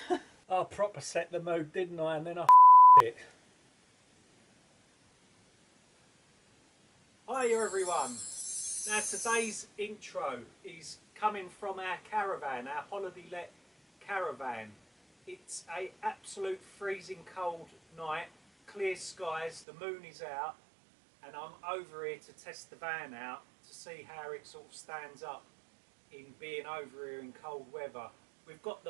I proper set the mood, didn't I? And then I it. Hiya everyone. Now today's intro is coming from our caravan, our holiday let caravan. It's a absolute freezing cold night, clear skies, the moon is out, and I'm over here to test the van out to see how it sort of stands up in being over here in cold weather. We've got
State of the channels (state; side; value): drops out; left; at 19.7 s